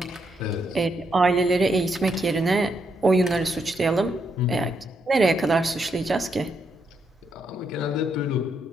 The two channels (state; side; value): normal; both; correlation 0.78